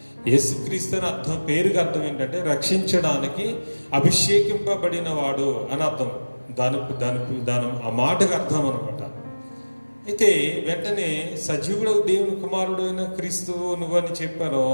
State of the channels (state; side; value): inverted; both; correlation -1.00